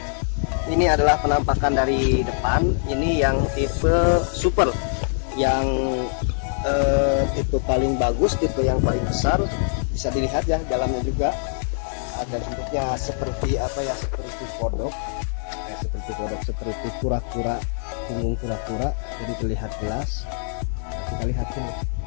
ini adalah penampakan dari depan. Ini yang tipe super, yang tipe paling bagus, tipe yang paling besar. Bisa dilihat ya, dalamnya juga ada bentuknya seperti apa ya, seperti kodok, seperti kura-kura, punggung kura-kura. Jadi terlihat jelas. Nah, kita lihat sini.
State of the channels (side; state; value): right; silent; 63 dB below the other